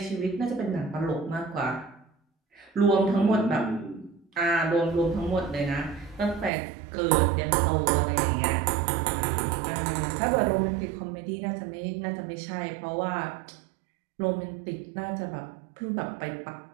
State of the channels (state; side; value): drops out; left; at 6.5 s